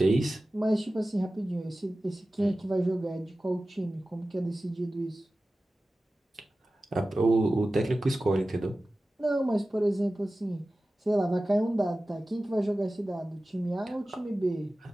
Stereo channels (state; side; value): normal; both; correlation 0.96